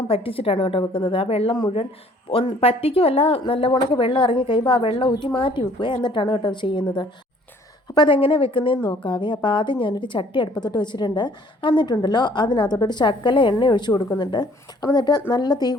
പറ്റിച്ചിട്ടാണ് കേട്ടോ വെക്കുന്നത്. ആ വെള്ളം മുഴുവൻ പറ്റിക്കുമല്ല, നല്ലവണ്ണക്ക് വെള്ളം ഇറങ്ങി കഴിയുമ്പോൾ ആ വെള്ളം ഊറ്റി മാറ്റി വെക്കുക, എന്നിട്ടാണ് കേട്ടോ ചെയ്യുന്നത്. അപ്പോൾ അതെങ്ങനെ വെക്കുന്നതെന്ന് നോക്കാവേ. അപ്പോൾ ആദ്യം ഞാനൊരു ചട്ടി അടുപ്പത്തോട്ട് വെച്ചിട്ടുണ്ട്. എന്നിട്ടുണ്ടല്ലോ അതിനകത്തോട്ടൊരു ശകല എണ്ണ ഒഴിച്ച് കൊടുക്കുന്നുണ്ട്. അപ്പോൾ എന്നിട്ട് നല്ല തീ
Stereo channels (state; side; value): normal; both; correlation 0.58